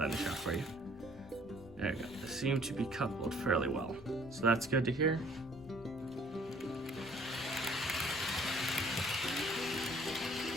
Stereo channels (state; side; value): noise; left; rumble, 22 dB below the sound